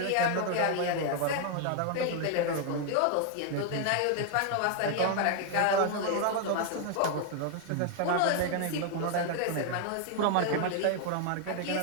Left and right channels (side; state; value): both; different; correlation 0.00